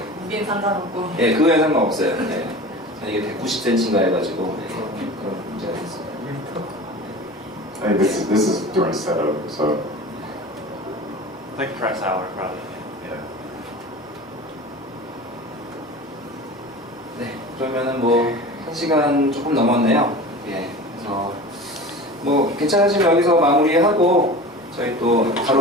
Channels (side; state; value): both; normal; correlation 0.35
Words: 무게는 상관없고. 그거에 상관없어요. 이게 190cm인가 해가지고 그런 문제가 있어요. Hey, this is during setup, so Like press hour, probably. yeah. 네, 그러면은 1시간 조금 넘었네요. 그래서 괜찮으시면 여기서 마무리하고 저희 또